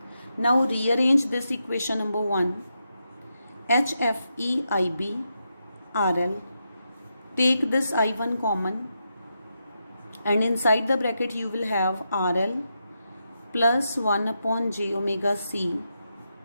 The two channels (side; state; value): both; inverted; correlation -0.85